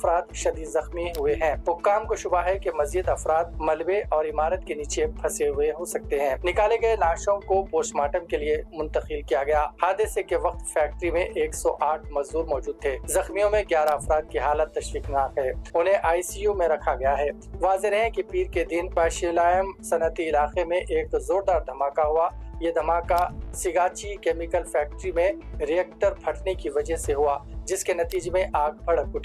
शदीद जख्मी हुए हैं। हुक्काम को शुबा है कि मजीद अफराद मलबे और इमारत के नीचे फंसे हुए हो सकते हैं। निकाले गए लाशों को पोस्टमार्टम के लिए मुंतकिल किया गया। हादसे के वक्त फैक्ट्री में 108 मजदूर मौजूद थे। जख्मियों में 11 अफराद की हालत तशवीशनाक है। उन्हें ICU में रखा गया है। वाज़ेह है कि पीर के दिन पाशिलायम सनती इलाके में एक जोरदार धमाका हुआ। ये धमाका सिगाची केमिकल फैक्ट्री में रिएक्टर फटने की वजह से हुआ, जिसके नतीजे में आग भड़क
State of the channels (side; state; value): both; identical; correlation 1.00